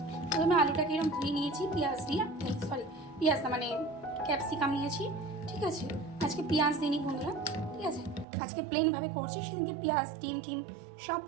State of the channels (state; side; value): drops out; left; at 8.2 s